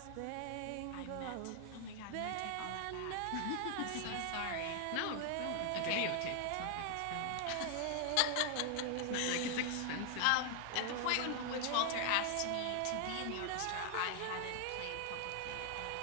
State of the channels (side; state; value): both; different; correlation 0.00